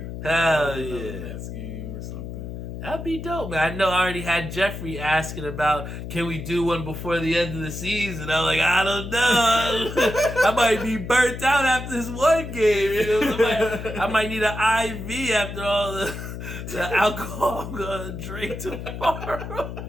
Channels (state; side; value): noise; left; hum, 8 dB below the sound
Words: Hell yeah! Next game or something. That'd be dope, man. I know I already had Jeffrey asking about, can we do one before the end of the season? I'm like, I don't know. I might be burnt out after this one game. I might need an IV after all the alcohol I'm going to drink tomorrow.